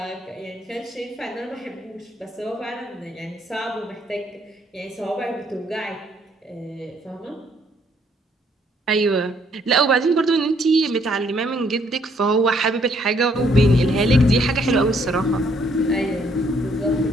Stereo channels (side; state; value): both; normal; correlation 0.68